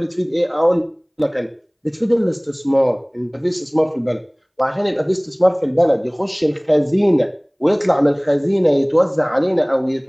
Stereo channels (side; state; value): both; identical; correlation 1.00